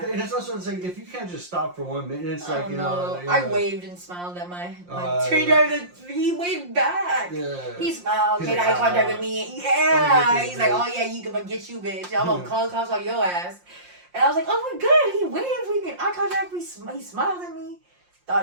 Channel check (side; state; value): left; late; 5.6 ms